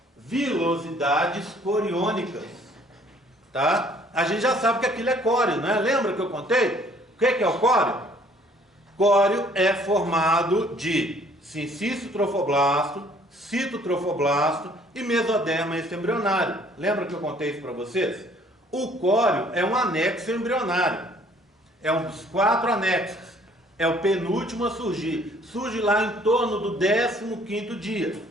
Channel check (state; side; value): normal; both; correlation 0.59